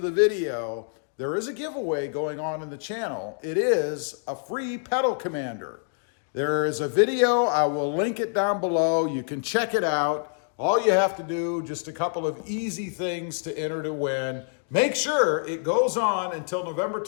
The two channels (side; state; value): right; silent; digital silence